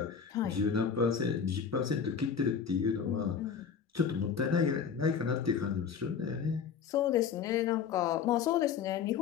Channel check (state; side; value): quieter; right; 6.9 dB